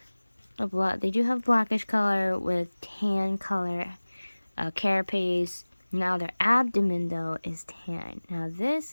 they do have blackish color with tan color carapace. Now their abdomen though is tan. Now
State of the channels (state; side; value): inverted; both; correlation -1.00